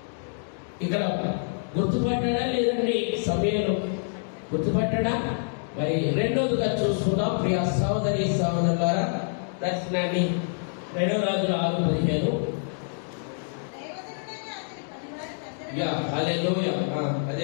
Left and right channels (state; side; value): silent; right; digital silence